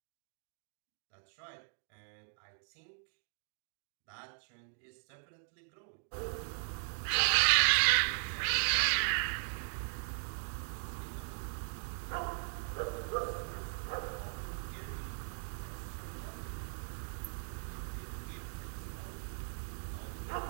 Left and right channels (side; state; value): left; silent; digital silence